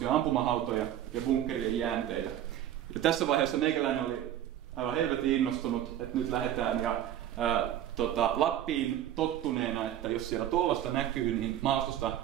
ampumahautoja ja bunkkerien jäänteitä. Ja tässä vaiheessa meikäläinen oli aivan helvetin innostunut, että nyt lähdetään ja Lappiin tottuneena, että jos siellä tuollaista näkyy, niin maastosta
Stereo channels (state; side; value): quieter; left; 11.5 dB